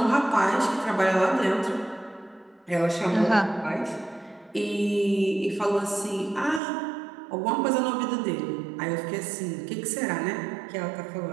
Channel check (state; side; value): drops out; left; at 6.6 s